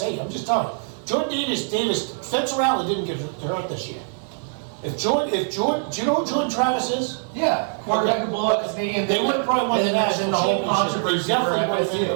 you. I'm just telling you. Jordan Davis, Spencer Rattler didn't get hurt this year. Do you know who Jordan Travis is? Yeah. Quarterback could blow up his knee and They would have probably won the national the whole championship. They controversy. definitely would have been in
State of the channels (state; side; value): silent; left; 63 dB below the other